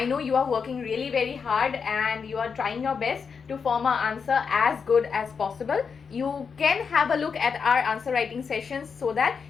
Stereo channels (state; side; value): quieter; right; 5.9 dB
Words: know you are working really very hard and you are trying your best to form an answer as good as possible. You can have a look at our answer writing sessions so that